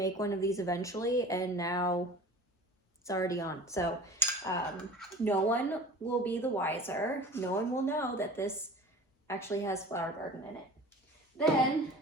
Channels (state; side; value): normal; both; correlation 0.40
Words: one of these eventually, and now it's already on. So no one will be the wiser. No one will know that this actually has Flower Garden in it. Then